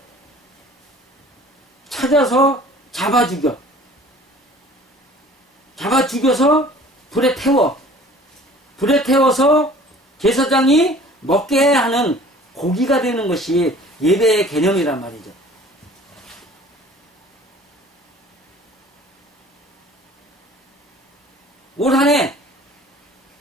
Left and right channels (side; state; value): both; normal; correlation 0.48